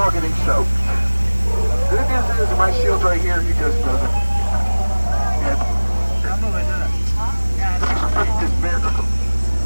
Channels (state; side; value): inverted; both; correlation -1.00